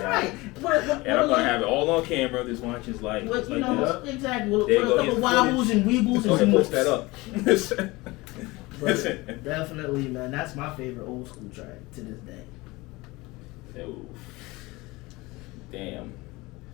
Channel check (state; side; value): quieter; right; 22.1 dB